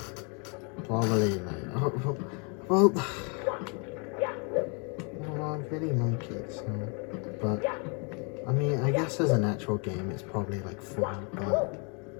Probably, mate. Well, I really like it, so... But, I mean, I guess as an actual game, it's probably like 4, but...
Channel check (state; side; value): quieter; right; 35.6 dB